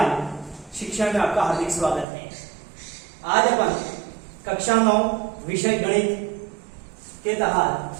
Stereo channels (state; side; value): drops out; left; at 2.1 s